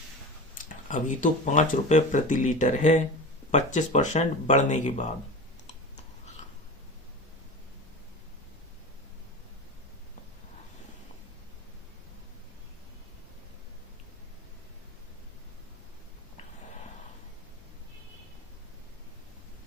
अभी तो 5 रुपए प्रति लीटर है, 25% बढ़ने के बाद।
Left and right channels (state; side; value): normal; both; correlation 0.30